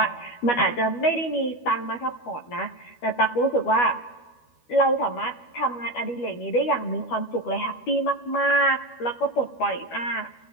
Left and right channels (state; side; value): late; right; 12 ms